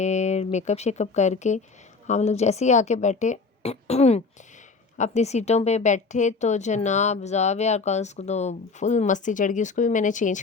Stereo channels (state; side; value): quieter; right; 4.3 dB